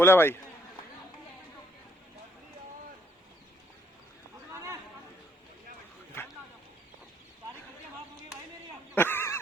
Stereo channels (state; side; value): normal; both; correlation 0.69